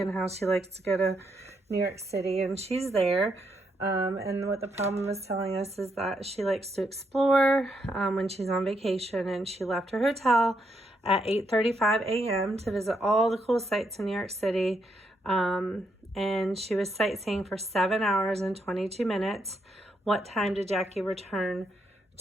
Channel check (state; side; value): normal; both; correlation 0.78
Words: how she likes to go to New York City, and she's there. And what the problem is telling us is that she likes to explore when she's on vacation, and she left her hotel at 8:35 a.m. to visit all the cool sites in New York City. And she was sightseeing for 7 hours and 22 minutes. What time did Jackie return